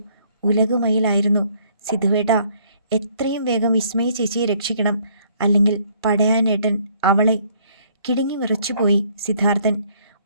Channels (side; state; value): both; inverted; correlation -0.63